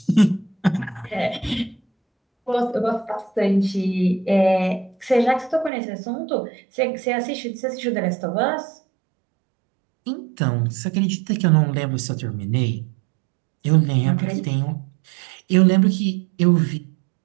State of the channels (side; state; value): left; drops out; at 5.7 s